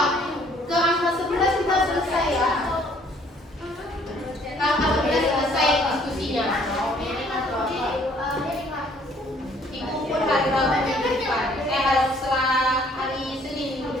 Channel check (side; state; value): both; normal; correlation 0.60